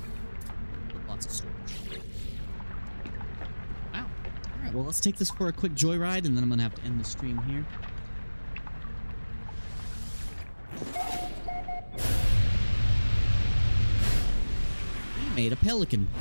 Well, let's take this for a quick joyride, and then I'm gonna have to end the stream here. We made a Pelican.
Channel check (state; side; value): inverted; both; correlation -1.00